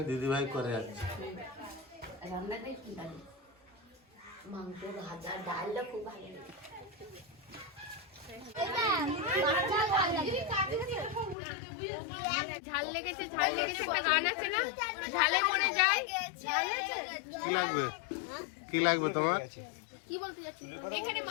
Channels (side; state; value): right; drops out; at 11.4 s